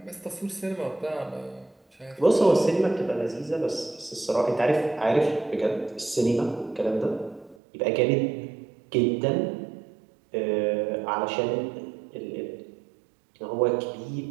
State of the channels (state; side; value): drops out; left; at 7.6 s